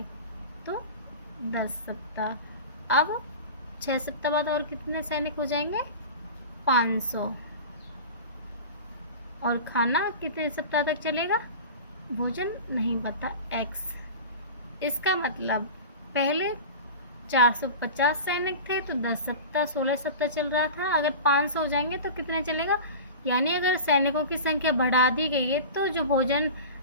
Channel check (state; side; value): inverted; both; correlation -0.32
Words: तो 10 सप्ताह। अब 6 सप्ताह बाद और कितने सैनिक हो जाएंगे, 500। और खाना कितने सप्ताह तक चलेगा, भोजन नहीं पता, x। इसका मतलब पहले 450 सैनिक थे तो 10 सप्ताह 16 सप्ताह चल रहा था, अगर 500 हो जाएंगे तो कितने चलेगा, यानी अगर सैनिकों की संख्या बढ़ा दी गई है तो जो भोजन